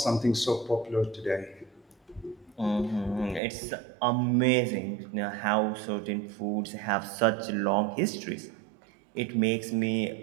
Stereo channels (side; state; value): left; drops out; at 3.4 s